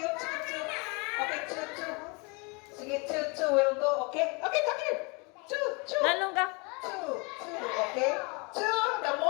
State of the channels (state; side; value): quieter; right; 29.2 dB